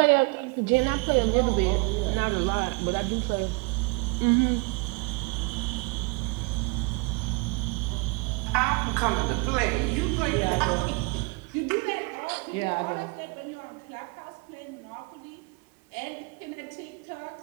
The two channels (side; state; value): left; quieter; 28.8 dB